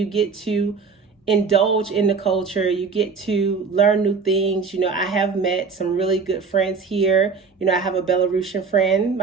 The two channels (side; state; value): left; quieter; 5.0 dB